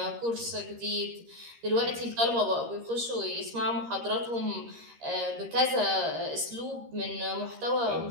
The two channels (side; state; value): left; late; 13 ms